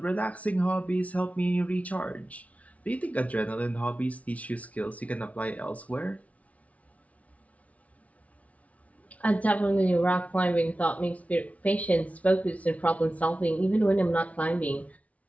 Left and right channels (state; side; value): late; right; 0.067 ms